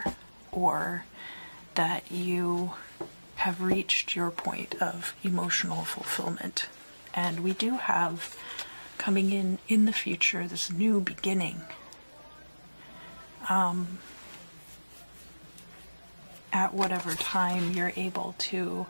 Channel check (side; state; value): both; inverted; correlation -1.00